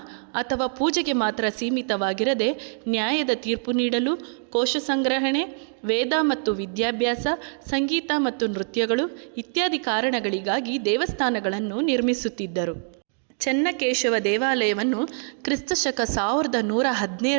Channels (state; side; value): silent; left; 55 dB below the other